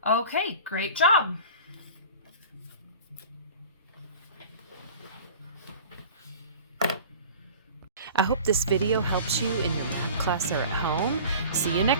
Okay, great job. I hope this video helps you in your math class or at home. See you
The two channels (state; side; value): inverted; both; correlation -0.41